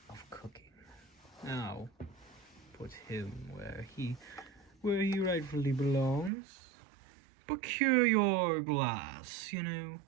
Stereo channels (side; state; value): left; drops out; at 6.3 s